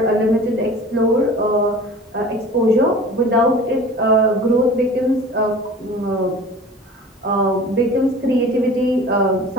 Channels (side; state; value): both; normal; correlation 0.41